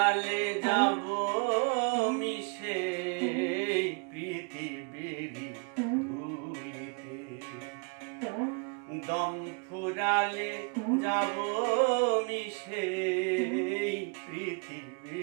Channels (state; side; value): quieter; left; 37.0 dB